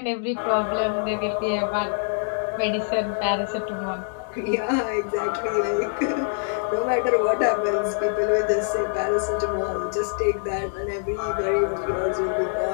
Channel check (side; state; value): right; silent; digital silence